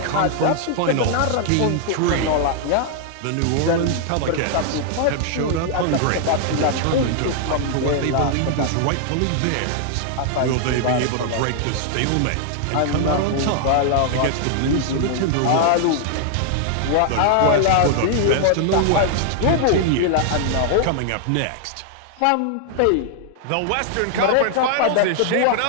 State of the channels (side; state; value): both; different; correlation 0.00